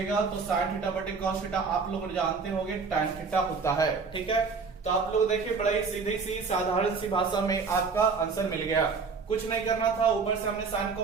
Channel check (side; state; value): left; quieter; 4.9 dB